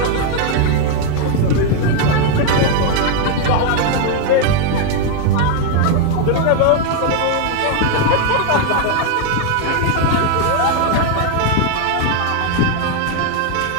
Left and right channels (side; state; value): both; different; correlation 0.00